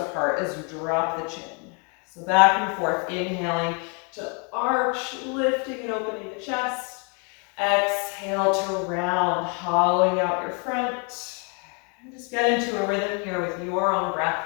as you drop the chin. So back and forth, inhaling to arch, lifting and opening the chest. Exhale to round, hollowing out your front. And just get into a rhythm here with your own breath.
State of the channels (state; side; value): quieter; right; 35.8 dB